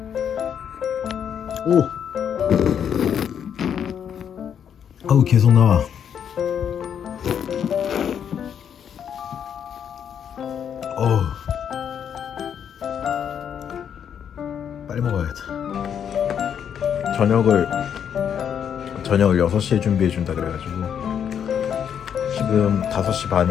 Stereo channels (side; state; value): right; quieter; 8.4 dB